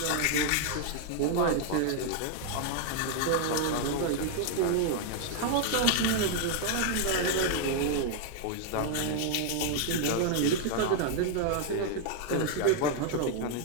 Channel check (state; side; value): different; both; correlation 0.00